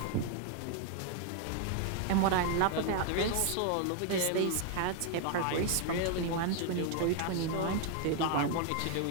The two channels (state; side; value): different; both; correlation 0.00